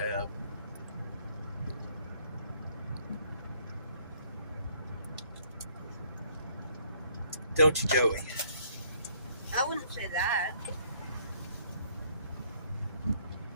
Don't you, Joey? I wouldn't say that.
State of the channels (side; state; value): both; inverted; correlation -0.64